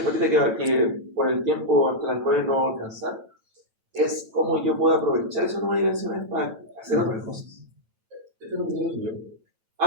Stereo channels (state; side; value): late; left; 9.1 ms